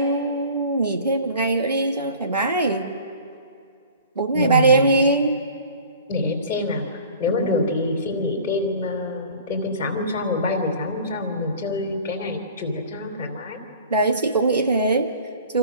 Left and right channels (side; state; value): both; inverted; correlation -0.45